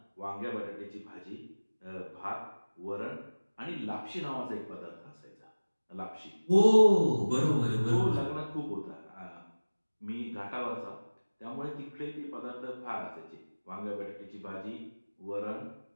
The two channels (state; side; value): inverted; both; correlation -1.00